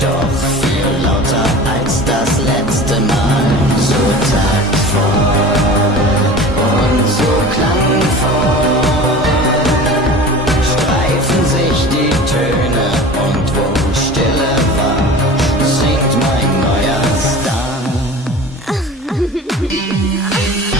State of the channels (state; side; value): normal; both; correlation 0.37